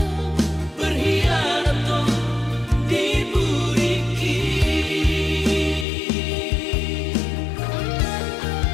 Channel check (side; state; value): right; drops out; at 5.9 s